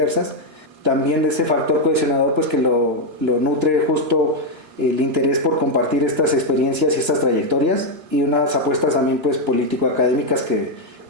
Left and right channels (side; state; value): left; late; 3.1 ms